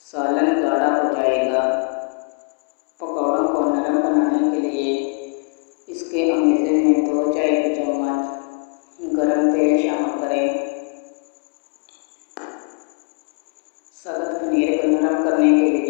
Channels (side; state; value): right; quieter; 38.5 dB